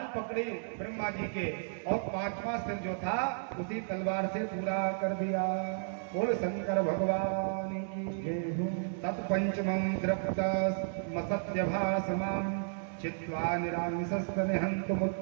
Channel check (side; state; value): left; silent; digital silence